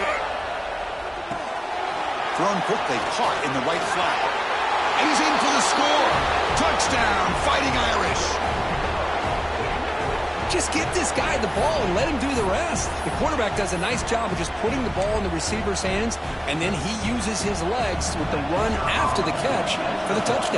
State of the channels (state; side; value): identical; both; correlation 1.00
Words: Thrown quickly, caught in the right flat. And he's in for the score. Touchdown, Fighting Irish. Just get this guy the ball and let him do the rest. The quarterback does a nice job of just putting the ball in the receiver's hands, and then he uses his legs with the run after the catch for the